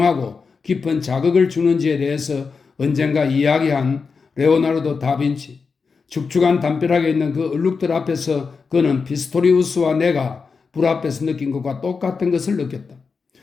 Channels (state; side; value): quieter; right; 5.0 dB